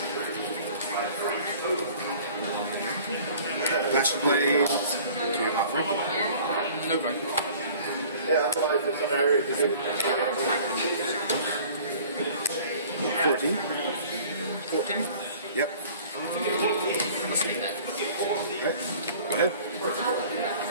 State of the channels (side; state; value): both; inverted; correlation -0.48